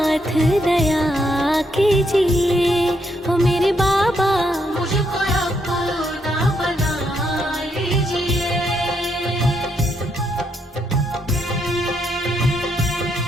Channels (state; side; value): normal; both; correlation 0.76